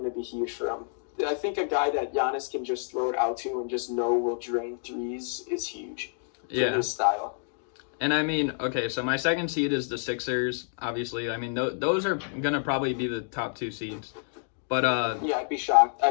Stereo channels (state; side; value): silent; right; digital silence